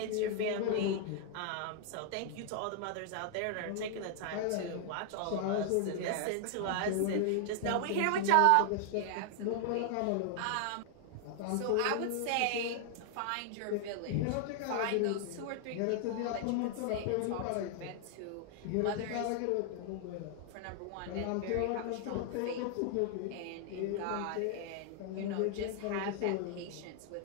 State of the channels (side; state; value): both; different; correlation 0.00